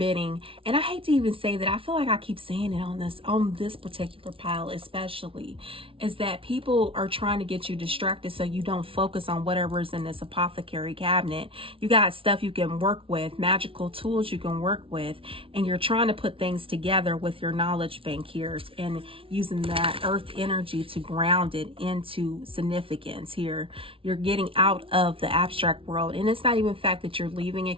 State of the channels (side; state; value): left; late; 0.26 ms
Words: And I hate to even say that. I feel like I keep saying it on this particular pile, especially, is that people are trying to get you distracted so you don't focus on whatever is in this apothecary cabinet. You got stuff you can work with, magical tools you can work with, and you're trying to put things together with your knowledge bank here and using that earth energy to ground it into significance here. You're getting out of the abstract world, and it's not even the fact that you're leaving it